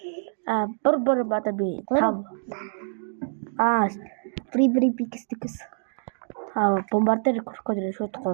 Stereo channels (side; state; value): left; silent; digital silence